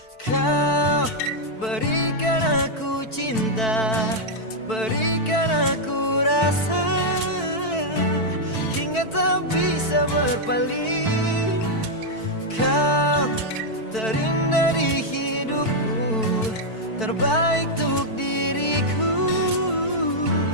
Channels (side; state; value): right; late; 4.5 ms